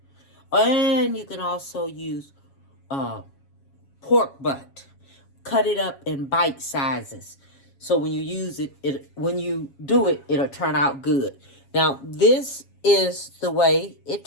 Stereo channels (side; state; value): right; late; 7.2 ms